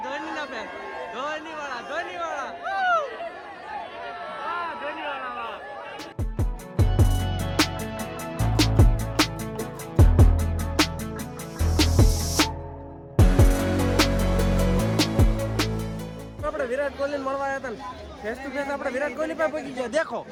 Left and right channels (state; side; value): identical; both; correlation 1.00